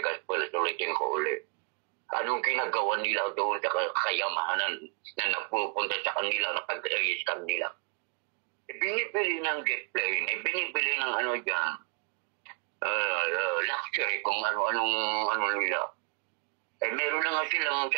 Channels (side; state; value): left; quieter; 34.0 dB